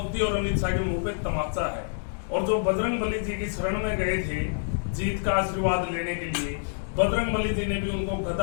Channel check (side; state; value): right; silent; digital silence